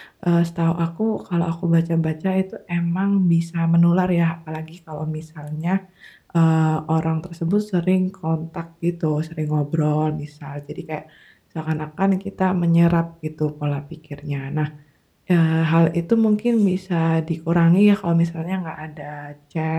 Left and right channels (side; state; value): both; identical; correlation 1.00